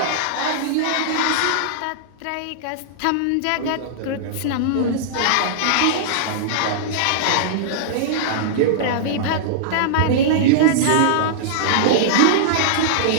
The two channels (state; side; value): different; both; correlation -0.02